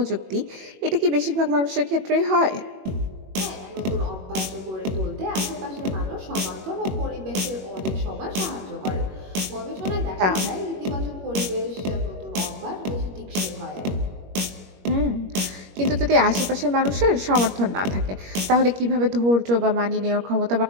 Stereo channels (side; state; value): left; late; 21 ms